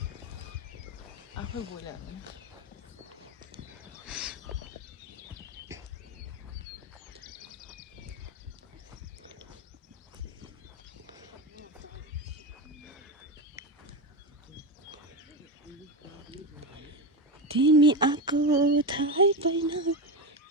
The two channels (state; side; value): normal; both; correlation 0.16